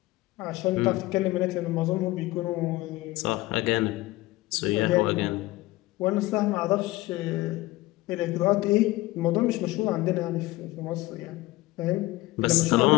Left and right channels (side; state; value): right; quieter; 18.8 dB